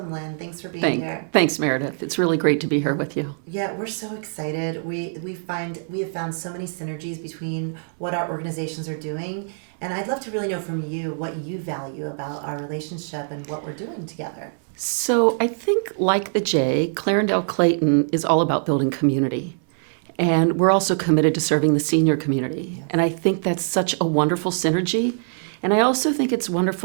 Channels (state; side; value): silent; left; 63 dB below the other